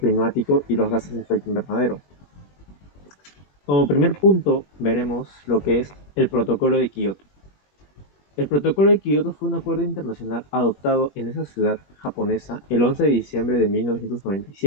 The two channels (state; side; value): late; right; 21 ms